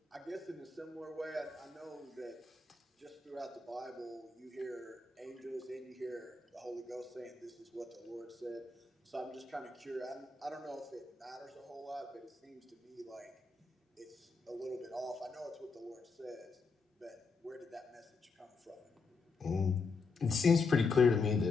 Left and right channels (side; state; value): right; quieter; 4.2 dB